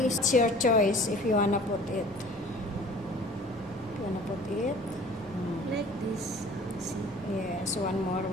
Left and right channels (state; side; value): normal; both; correlation 0.47